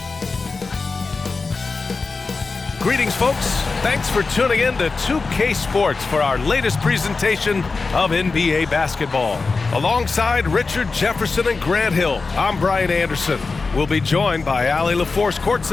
Greetings, folks. Thanks for tuning in to 2K Sports for our latest presentation of NBA basketball. Alongside Richard Jefferson and Grant Hill, I'm Brian Anderson. We'll be joined by Allie LaForce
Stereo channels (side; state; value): right; quieter; 4.1 dB